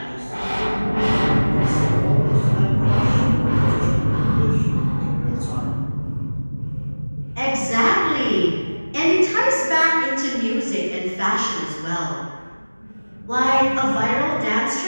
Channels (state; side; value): inverted; both; correlation -1.00